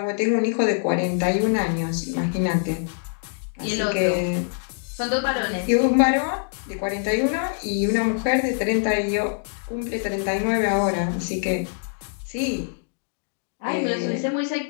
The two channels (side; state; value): right; silent; digital silence